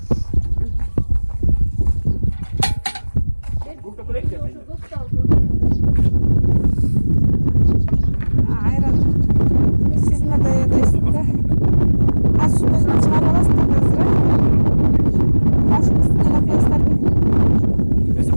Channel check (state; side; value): inverted; both; correlation -1.00